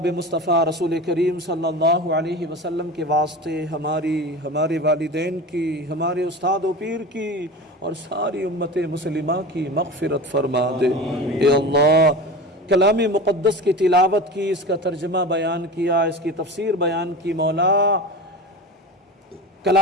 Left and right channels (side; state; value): both; normal; correlation 0.31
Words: مصطفیٰ رسول کریم صلی اللہ علیہ وسلم کے واسطے ہمارے والدین کی، ہمارے استاد و پیر کی، اور ساری امت مسلمہ کی مغفرت فرما دے۔ اے اللہ، کلام مقدس کی تلاوت کی، اس کا ترجمہ بیان کیا، اس کی تفسیر بیان کی، مولا